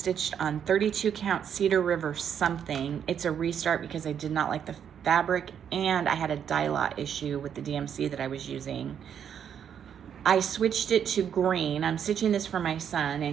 on 32 count Cedar River something. It's a restart because I did not like the fabric, and I had a dye lot issue with the DMC that I was using. I switched it to green. I'm stitching this for my son,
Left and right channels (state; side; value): quieter; left; 8.4 dB